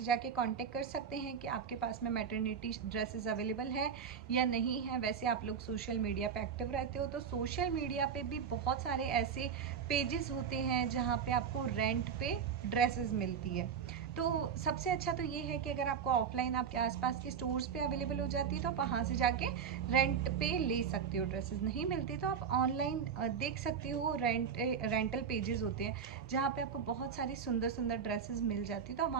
जाके कांटेक्ट कर सकते हैं कि आपके पास में मैटरनिटी ड्रेसेस अवेलेबल है या नहीं है। वैसे आप लोग सोशल मीडिया पे एक्टिव रहते हो, तो सोशल मीडिया पे भी बहुत सारे ऐसे पेजेस होते हैं जहाँ पे आपको रेंट पे ड्रेसेस मिलती है। तो सबसे अच्छा तो ये है कि अगर आपको ऑफलाइन आपके आसपास के स्टोर्स पे अवेलेबल हो जाती है तो आप वहाँ से जाके रेंट पे ले सकते हो। ड्रेसेस नहीं मिलती तो आप ऑनलाइन देख सकते हो। रेंटल पेजेस होते हैं जहाँ पे आपको बहुत सारी सुंदर सुंदर ड्रेसेस मिल जाती है, तो आप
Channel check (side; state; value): left; quieter; 7.1 dB